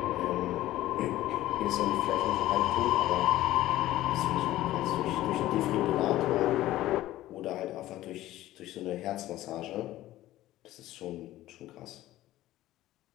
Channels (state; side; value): quieter; right; 15.2 dB